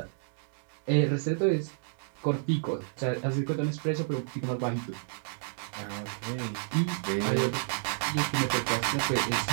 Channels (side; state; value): left; silent; digital silence